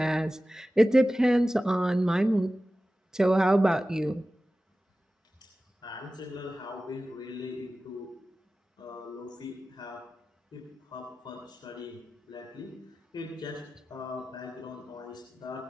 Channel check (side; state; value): both; normal; correlation 0.95